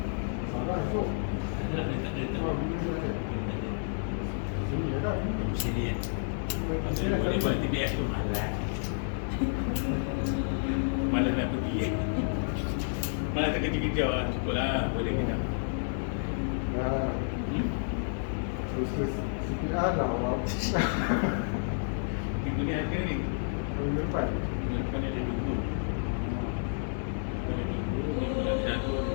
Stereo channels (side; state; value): right; silent; 58 dB below the other